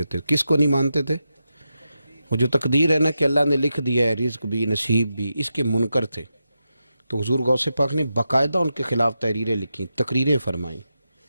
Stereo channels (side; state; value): both; inverted; correlation -0.88